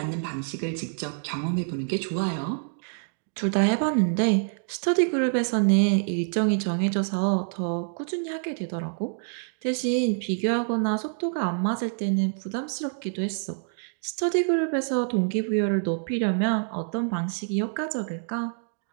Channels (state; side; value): silent; left; digital silence